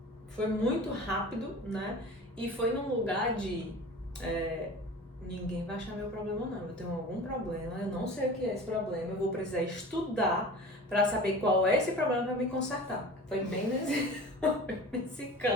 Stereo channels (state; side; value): normal; both; correlation 0.38